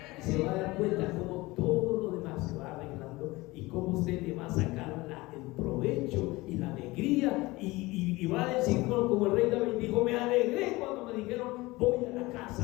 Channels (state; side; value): quieter; right; 21.2 dB